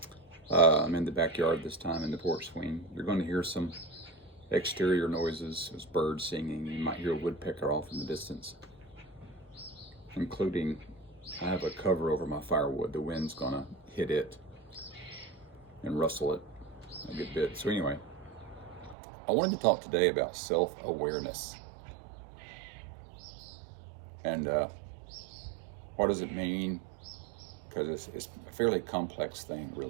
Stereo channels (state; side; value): drops out; left; at 18.9 s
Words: I'm in the backyard this time in the porch swing. You're going to hear some exterior noises. There's birds singing. You might hear a woodpecker off in the distance, including I have a cover over my firewood. The wind's going to hit it and rustle it a good bit. So anyway, I wanted to talk today about self-awareness. And what does it mean? Because it's a fairly complex thing,